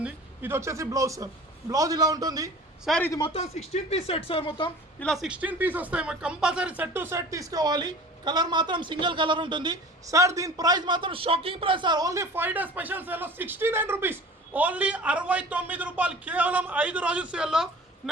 ఇది వచ్చేసి బ్లౌజ్ సార్. బ్లౌజ్ ఇలా ఉంటుంది సార్. ఇది మొత్తం 16 piece సెట్ సార్. మొత్తం ఇలా 16 piece వస్తాయి. కంపల్సరీ సెట్ టు సెట్ తీసుకోవాలి. కలర్ మాత్రం సింగిల్ కలర్ ఉంటుంది సార్. దీని ప్రైస్ మాత్రం shocking price sir. Only 5 days special సేల్లో 69 రూపీస్, ఓన్లీ 69 రూపాయలు, కేవలం 5 రోజుల సేల్లో.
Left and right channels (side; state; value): both; normal; correlation 0.42